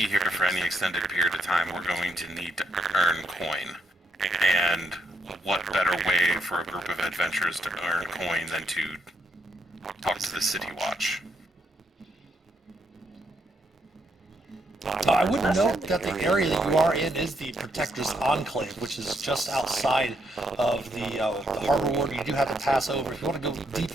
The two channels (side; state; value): both; normal; correlation 0.76